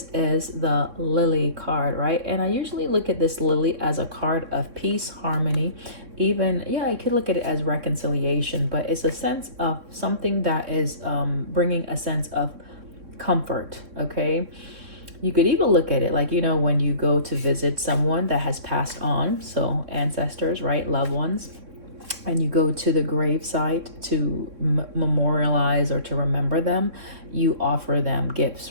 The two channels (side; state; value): left; late; 3.6 ms